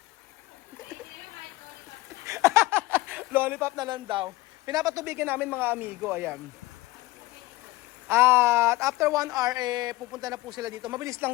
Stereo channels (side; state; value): right; quieter; 19.7 dB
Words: Lollipop na lang daw. Pinapatubigan namin mga amigo, ayan. At after 1 hour, pupunta na po sila dito. Mabilis